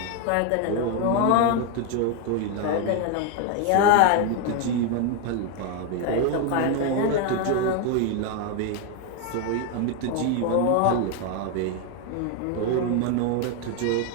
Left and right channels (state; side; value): different; both; correlation 0.01